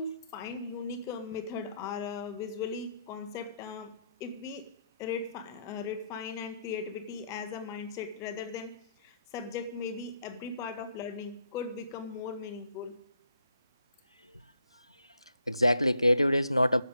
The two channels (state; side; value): inverted; both; correlation -0.73